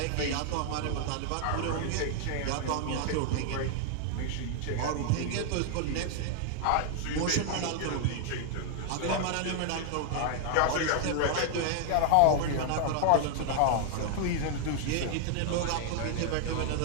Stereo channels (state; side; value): different; both; correlation 0.00